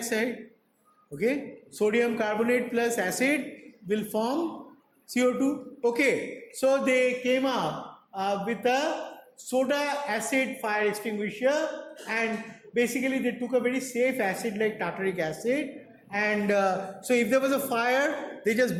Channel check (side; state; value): both; identical; correlation 1.00